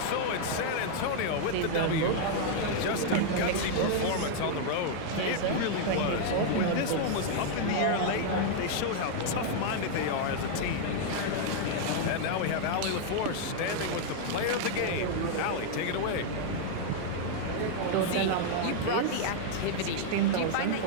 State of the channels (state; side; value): different; both; correlation 0.00